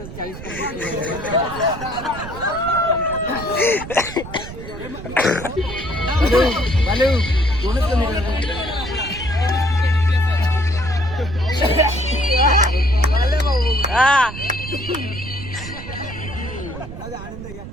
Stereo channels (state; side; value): noise; right; rumble, 11 dB below the sound